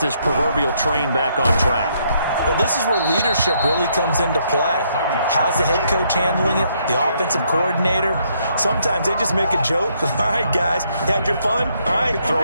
proverbial train back on track? Well, this is where leadership really comes into play. How's the head coach handling it? The offensive coordinator? Sometimes they just make a joke. All right, guys, you had your fun? All right. Throw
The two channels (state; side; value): inverted; both; correlation -0.72